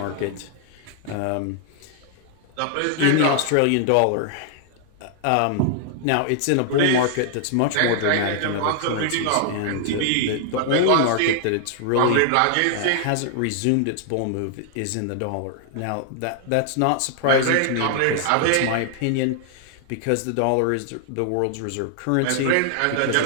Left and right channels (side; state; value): both; different; correlation 0.00